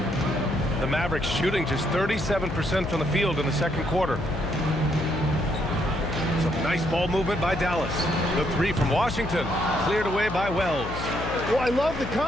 The Mavericks shooting just 37% from the field in the second quarter. Some nice ball movement by Dallas. The 3 from Washington, cleared away by Wells. Well, I love the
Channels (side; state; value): left; noise; hum, 7 dB below the sound